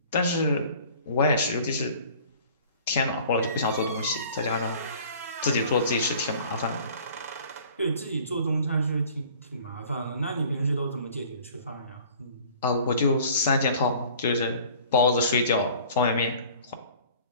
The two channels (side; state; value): both; inverted; correlation -0.49